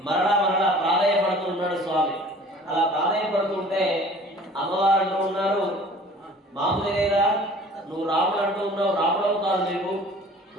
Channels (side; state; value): both; normal; correlation 0.48